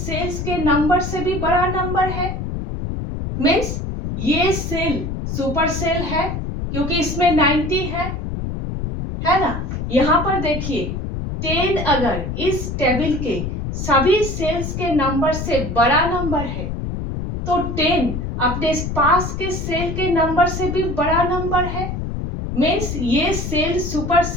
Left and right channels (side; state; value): left; noise; rumble, 4 dB below the sound